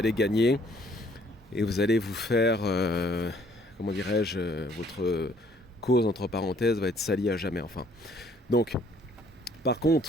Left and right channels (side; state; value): both; normal; correlation 0.63